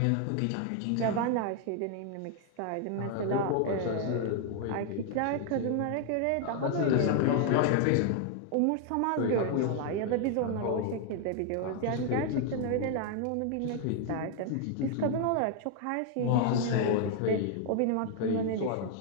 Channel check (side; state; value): both; different; correlation 0.00